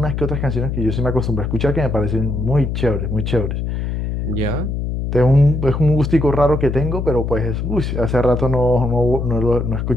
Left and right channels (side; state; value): left; noise; hum, 2 dB below the sound